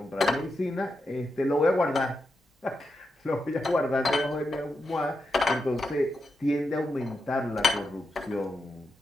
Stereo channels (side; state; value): both; normal; correlation 0.87